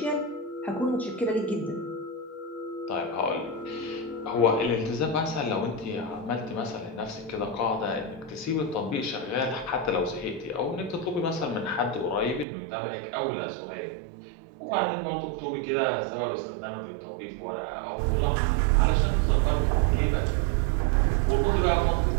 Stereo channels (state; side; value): drops out; left; at 12.5 s